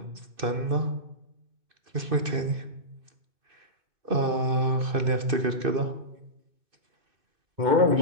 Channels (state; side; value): late; left; 2.6 ms